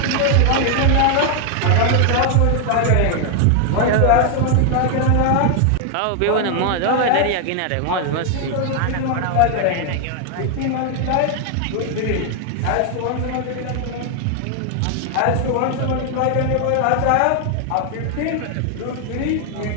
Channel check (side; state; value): both; different; correlation 0.00